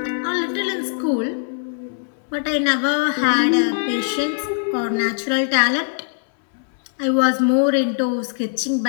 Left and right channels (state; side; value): silent; right; 65 dB below the other